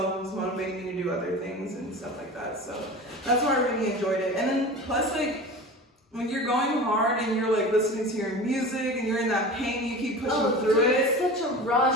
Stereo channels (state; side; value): normal; both; correlation 0.34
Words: it was motivating me to do other things and stuff like that. So that's why I really enjoyed it. And then plus, like when you're going hard and you're like listening to your music and you're in that pain, you keep pushing through it. It's such a